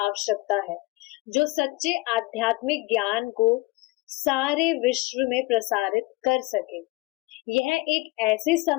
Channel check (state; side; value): quieter; right; 22.7 dB